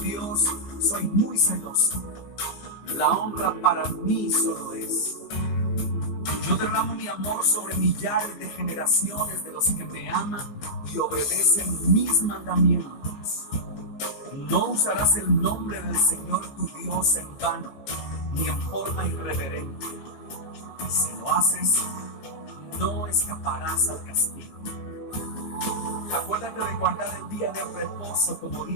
soy muy celoso. La honra para mí solo es. Yo derramo mi amor sobre millares de generaciones de los que me aman y obedecen mis mandamientos. No usarás el nombre del Señor tu Dios en vano, ni en forma irreverente. Si lo haces, no escaparás al castigo. Acuérdate de guardar el día de reposo como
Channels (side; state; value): right; late; 15 ms